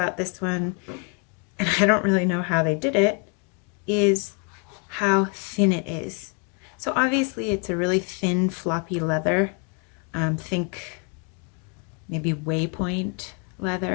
this one, and I don't really know how they did it, is how thin it is. So obviously it's a really thin, floppy leather. Think maybe Waypoint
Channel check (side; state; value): right; quieter; 37.5 dB